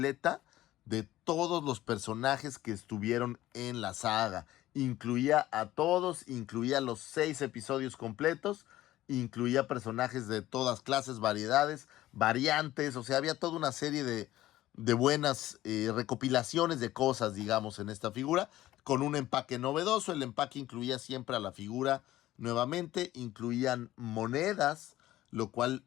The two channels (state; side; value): quieter; right; 15.1 dB